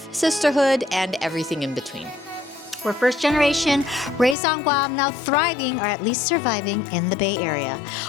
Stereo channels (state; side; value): drops out; right; at 4.4 s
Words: sisterhood, and everything in between. We're first generation, raised on Guam, now thriving or at least surviving in the Bay Area.